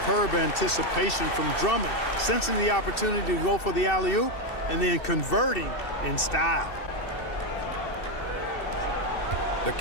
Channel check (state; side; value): late; right; 2.7 ms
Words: anticipation from Drummond, sensing the opportunity to go for the alley-oop and then converting in style. The